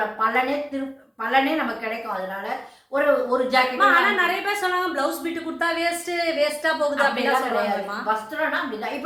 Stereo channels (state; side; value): identical; both; correlation 1.00